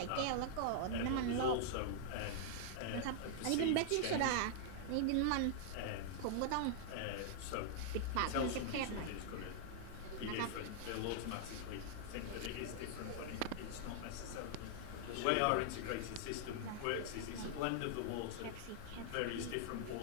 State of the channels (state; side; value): different; both; correlation -0.01